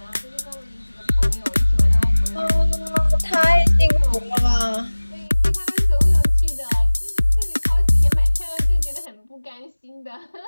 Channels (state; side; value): inverted; both; correlation -1.00